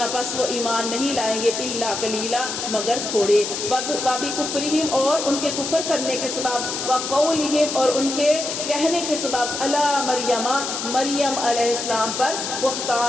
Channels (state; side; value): noise; left; hiss, 4 dB below the sound